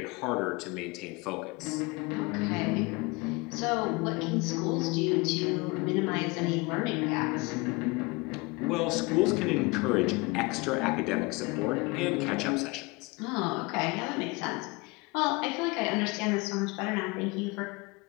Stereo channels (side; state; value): right; quieter; 25.7 dB